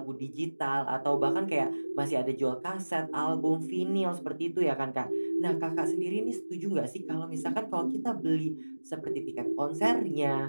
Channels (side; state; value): both; inverted; correlation -1.00